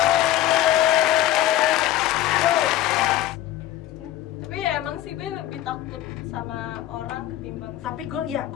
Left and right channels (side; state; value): right; quieter; 13.7 dB